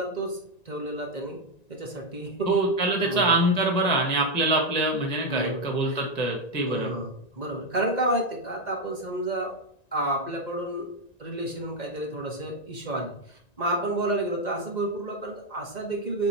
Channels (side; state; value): right; late; 1.9 ms